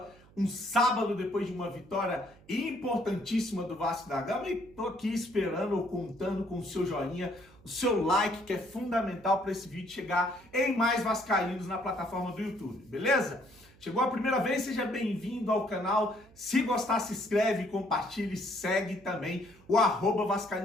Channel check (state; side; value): noise; right; hum, 26 dB below the sound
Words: um sábado depois de uma vitória importantíssima do Vasco da Gama, e tô aqui esperando ou contando com o seu joinha, o seu like, que é fundamental para esse vídeo chegar em mais vascaínos na plataforma do YouTube, beleza? Chegou a primeira vez, seja bem-vindo ao canal. Se gostar, se inscreve, compartilhe, segue também o